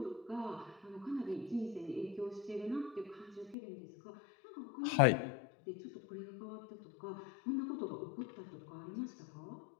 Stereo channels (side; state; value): right; drops out; at 3.6 s